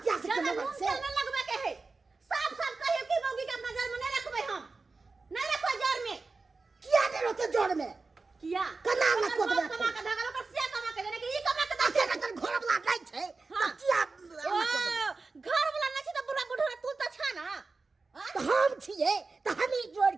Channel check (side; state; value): left; quieter; 3.9 dB